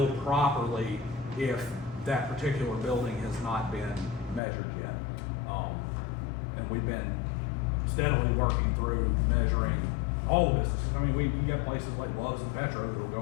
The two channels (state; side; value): drops out; right; at 4.4 s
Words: properly if that particular building has not been measured yet. And we've been steadily working through measuring all the businesses. I mean, you got places like Love's and Petro that'll